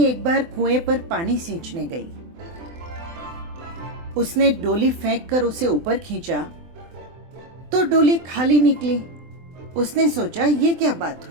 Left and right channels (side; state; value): left; late; 24 ms